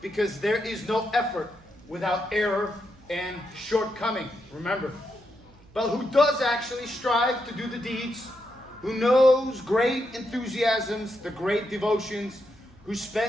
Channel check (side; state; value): right; noise; hum, 26 dB below the sound